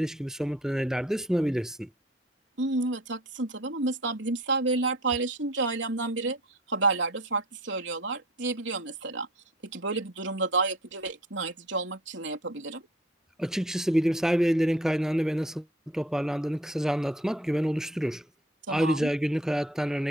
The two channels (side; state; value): both; normal; correlation 0.49